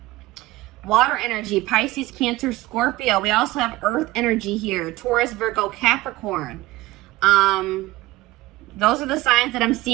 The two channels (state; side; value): quieter; left; 18.5 dB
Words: Water energy, Pisces, Cancer, Scorpio. We also have earth energy here. Taurus, Virgo, Capricorn. Those are the signs that I'm